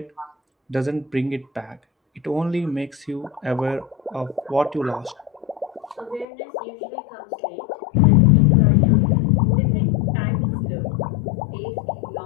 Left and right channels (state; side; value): drops out; right; at 6.2 s